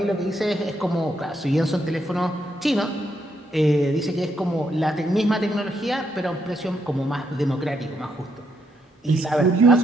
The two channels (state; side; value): normal; both; correlation 0.77